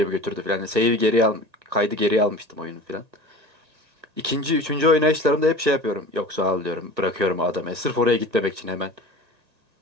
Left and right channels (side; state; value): left; late; 1.4 ms